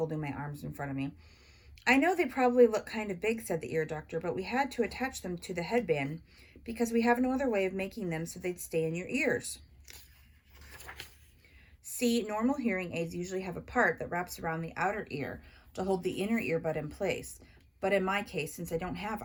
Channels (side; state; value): both; identical; correlation 1.00